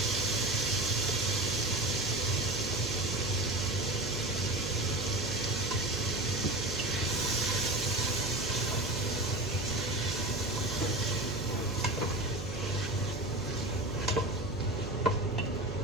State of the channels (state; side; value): noise; right; hum, 7 dB below the sound